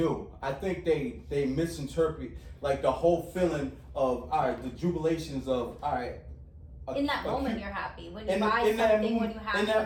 I think they misinterpret like the whole feeling of all right, the jubilations of all right, In that moment, cute- you're happy. When you buy something, when you have in that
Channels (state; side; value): identical; both; correlation 1.00